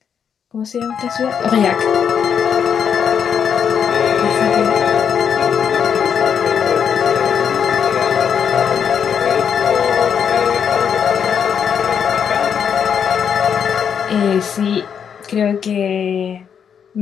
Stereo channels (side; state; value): right; quieter; 7.6 dB